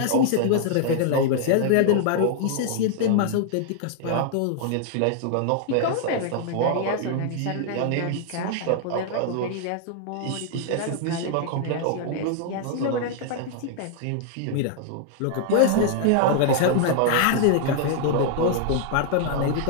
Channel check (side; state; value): both; different; correlation 0.00